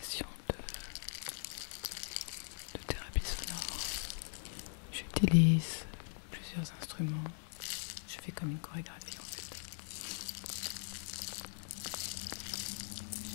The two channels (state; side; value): silent; right; digital silence